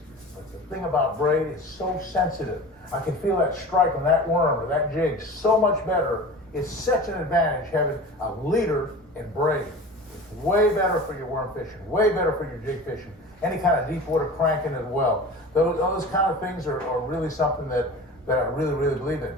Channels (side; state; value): both; normal; correlation 0.36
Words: But the thing about braid is so sensitive. I can feel that strike on that worm or that jig so much better. It's such an advantage having a leader and braid. It's way better for your worm fishing, way better for your jig fishing, any kind of deep water cranking as well. Those kind of things are really something that I really, really believe in.